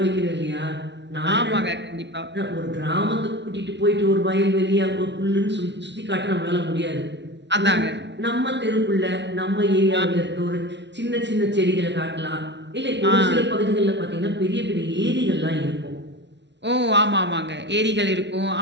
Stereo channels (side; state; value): left; late; 0.51 ms